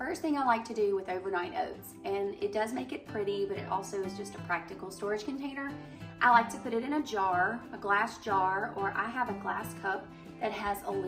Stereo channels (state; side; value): identical; both; correlation 1.00